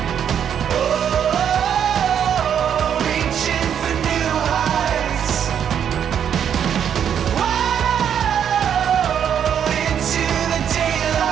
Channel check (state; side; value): quieter; left; 8.6 dB